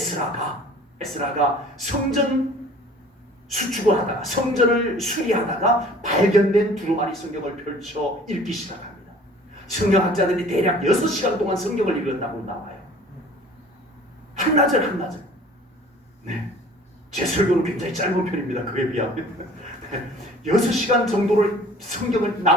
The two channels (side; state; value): both; normal; correlation 0.49